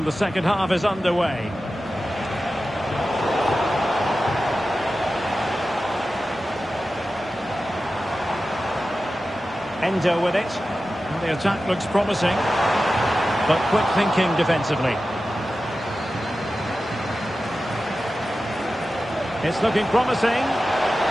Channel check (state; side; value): normal; both; correlation 0.94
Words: the second half is underway. Endo with it. Well, the attack looks promising, but quick thinking defensively. It's looking promising.